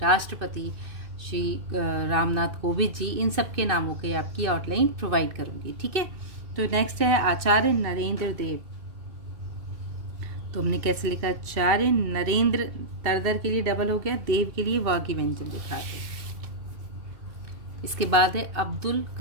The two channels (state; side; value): late; left; 2.6 ms